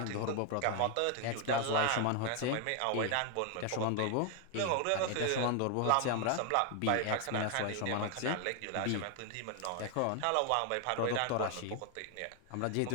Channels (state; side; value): different; both; correlation 0.00